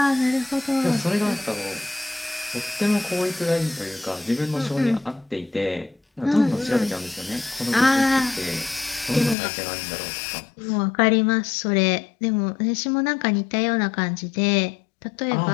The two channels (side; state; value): right; drops out; at 9.3 s